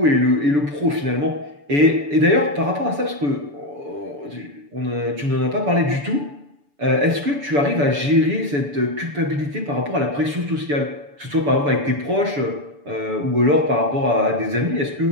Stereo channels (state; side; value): late; left; 6.9 ms